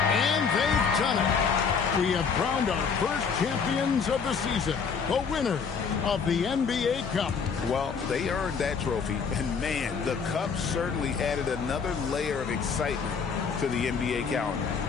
Done it. We have crowned our first champions of the season, the winners of the NBA Cup. Well, they earned that trophy, and man, the Cup certainly added another layer of excitement to the NBA calendar.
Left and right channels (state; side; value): quieter; right; 5.9 dB